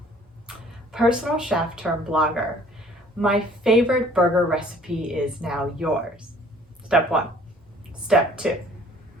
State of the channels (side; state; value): both; normal; correlation 0.55